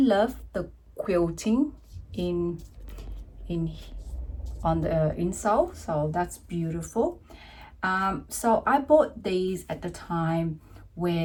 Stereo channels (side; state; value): both; identical; correlation 1.00